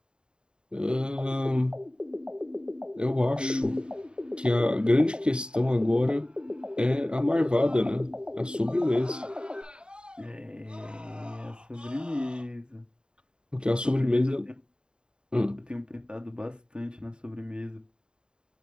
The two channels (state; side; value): late; left; 0.050 ms